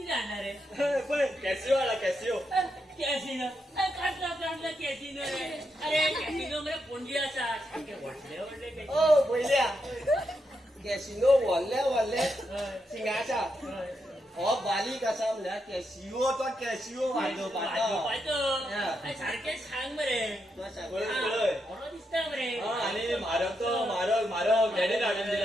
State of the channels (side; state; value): both; normal; correlation 0.83